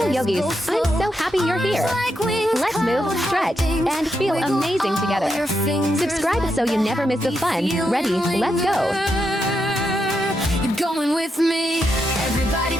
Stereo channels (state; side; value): normal; both; correlation 0.83